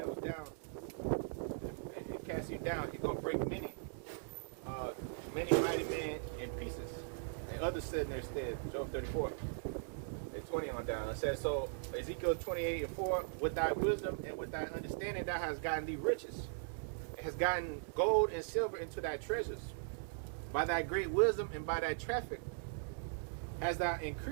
down and cast you down. He's gonna break many mighty men in pieces, and others sit in their stead. Job 34. 20 on down. It says, so Ezekiel 28:4, with thy wisdom and with thy understanding thou hast gotten thee riches. It has gotten gold and silver into thy treasures. By thy great wisdom and by thy traffic hast thou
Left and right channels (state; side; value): silent; left; digital silence